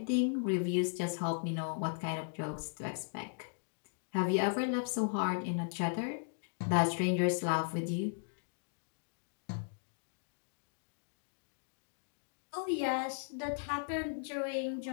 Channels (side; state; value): right; silent; digital silence